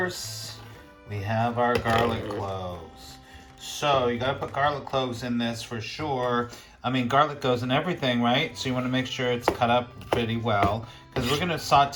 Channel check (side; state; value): both; identical; correlation 1.00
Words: we have our garlic cloves. So you gotta put garlic cloves in this for sure. I mean, garlic goes in everything, right? So you wanna make sure it's cut up pretty well because we're gonna